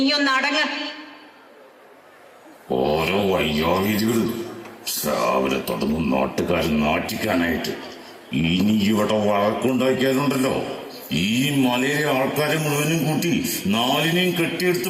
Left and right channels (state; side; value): identical; both; correlation 1.00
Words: അടങ്ങ്. ഓരോ വയ്യാവിധികൾ രാവിലെ തുടങ്ങും നാട്ടുകാരൻ നാട്ടിക്കാനായിട്ട്. ഇനി ഇവിടെ വഴക്കുണ്ടാക്കിയാലുണ്ടല്ലോ, ഈ മലയിലെ ആൾക്കാരെ മുഴുവനും കൂട്ടി 4നെയും